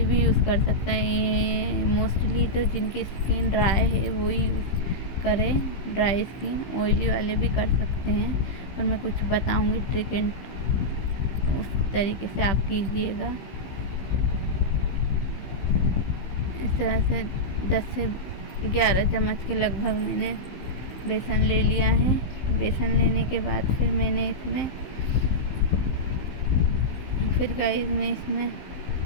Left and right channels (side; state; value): right; late; 15 ms